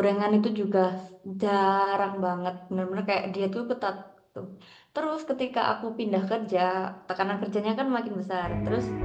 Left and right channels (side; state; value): both; identical; correlation 1.00